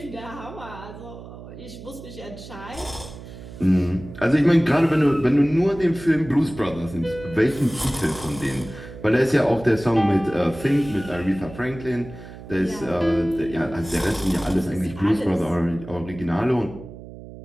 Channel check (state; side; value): noise; right; hum, 15 dB below the sound